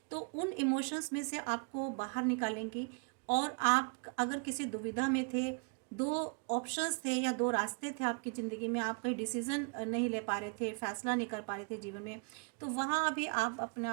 तो उन इमोशंस में से आपको बाहर निकालेंगी। और आप अगर किसी दुविधा में थे, दो ऑप्शंस थे या दो रास्ते थे आपकी ज़िंदगी में, आप कहीं डिसीज़न नहीं ले पा रहे थे, फैसला नहीं कर पा रहे थे जीवन में, तो वहाँ भी आप अपने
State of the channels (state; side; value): quieter; left; 37.4 dB